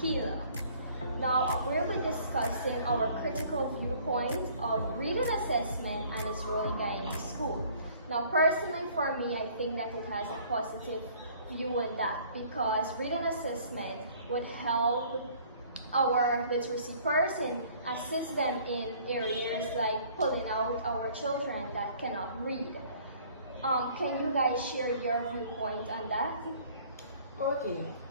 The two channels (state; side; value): inverted; both; correlation -0.55